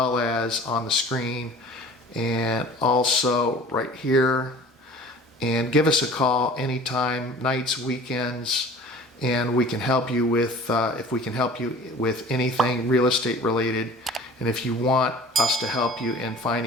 as on the screen, and also right here. And give us a call anytime, nights, weekends, and we can help you with, if we can help you with anything real estate related. And if you want us to help you in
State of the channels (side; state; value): both; normal; correlation 0.45